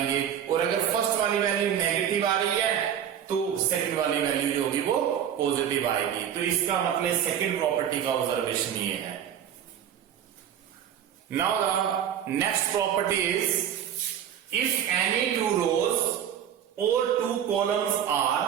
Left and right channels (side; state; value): left; quieter; 9.4 dB